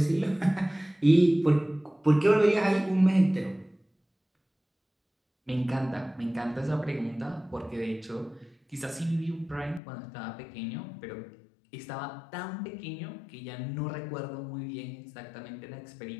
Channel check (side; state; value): right; drops out; at 9.8 s